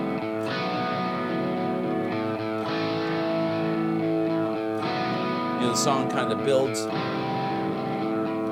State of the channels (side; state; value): both; identical; correlation 1.00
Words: The song kind of builds, and